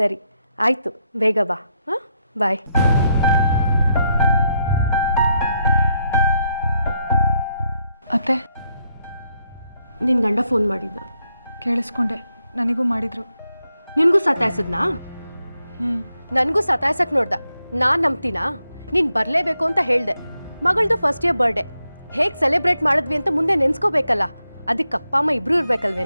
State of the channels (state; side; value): inverted; both; correlation -0.80